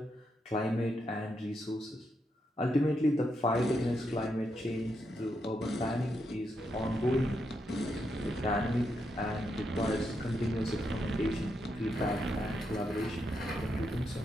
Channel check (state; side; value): normal; both; correlation 0.82